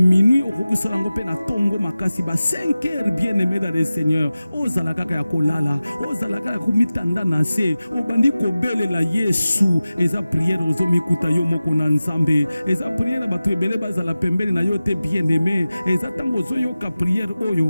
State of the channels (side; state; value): both; inverted; correlation -0.96